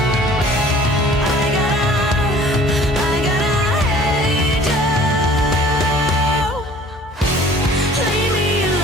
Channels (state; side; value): normal; both; correlation 0.50